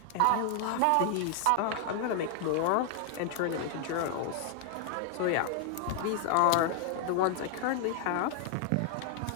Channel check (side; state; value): both; different; correlation 0.00